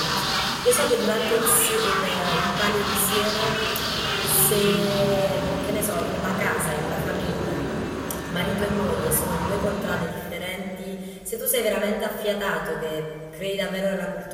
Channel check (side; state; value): both; identical; correlation 1.00